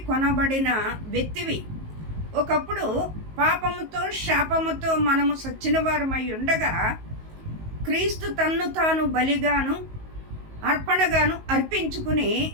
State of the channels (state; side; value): late; left; 19 ms